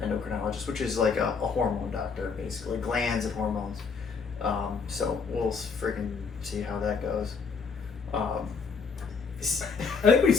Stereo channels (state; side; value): quieter; right; 5.3 dB